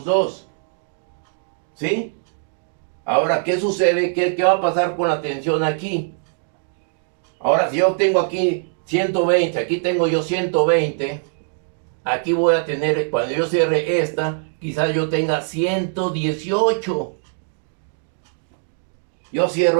dos. ¿Sí? Ahora, ¿qué sucede? ¿Qué va a pasar con la tensión aquí? Ahora, si yo tengo aquí 120, aquí tengo yo 120, aquí voy a tener, cuando yo cierre esta, quizás yo tenga 118. Yo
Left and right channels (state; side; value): silent; left; digital silence